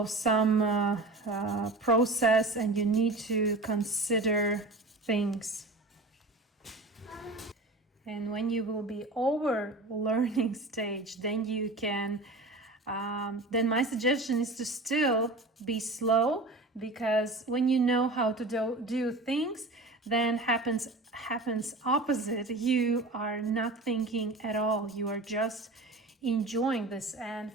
some process and you need to consider things. And when you will be over learning stage, then you can, then my suggestion is to still be slow, because when you know how to do things, then happens opposite. You are not thinking at all. You are just enjoying this. And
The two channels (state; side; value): quieter; left; 3.0 dB